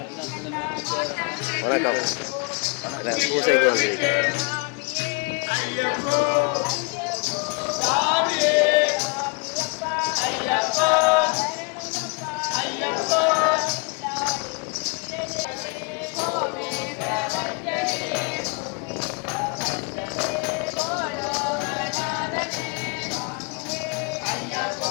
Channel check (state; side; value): quieter; right; 33.6 dB